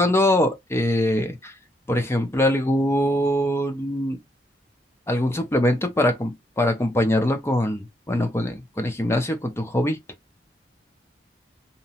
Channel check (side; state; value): both; normal; correlation 0.75